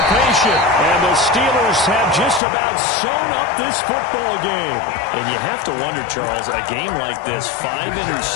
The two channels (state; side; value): drops out; right; at 2.4 s